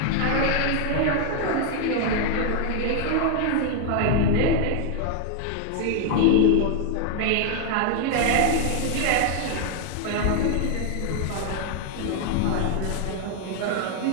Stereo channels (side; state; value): both; different; correlation 0.00